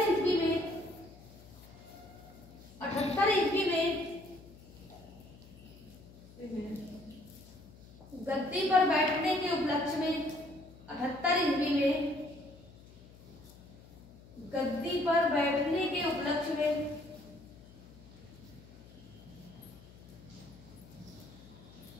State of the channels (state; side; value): noise; left; hum, 21 dB below the sound